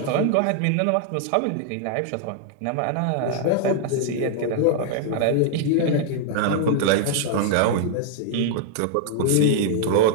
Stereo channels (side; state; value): both; different; correlation 0.00